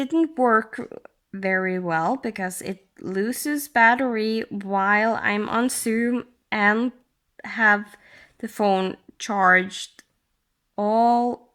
work very well because it loses battery while I'm on Zoom and have the phone charged all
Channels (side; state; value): both; identical; correlation 1.00